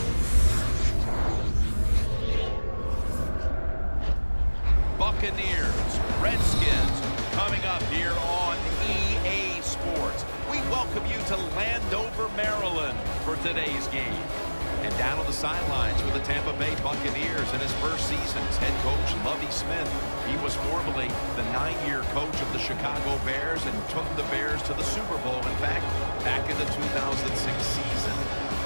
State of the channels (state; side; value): inverted; both; correlation -1.00